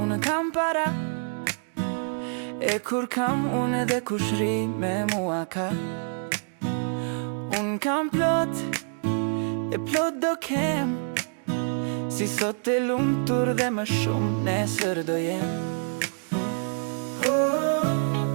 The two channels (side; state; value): left; silent; 60 dB below the other